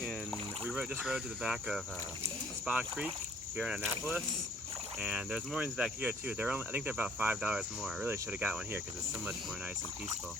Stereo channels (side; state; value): both; normal; correlation 0.59